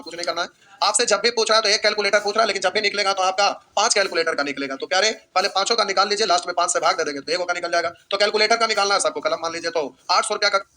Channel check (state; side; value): identical; both; correlation 1.00